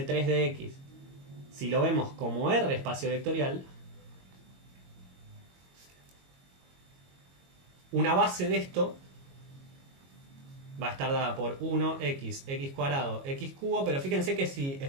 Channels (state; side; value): late; left; 22 ms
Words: de X, si lo vemos como R espacio vectorial, una base de esto va a estar dada por 1x, x cuadrado, x cubo, pero fíjense que si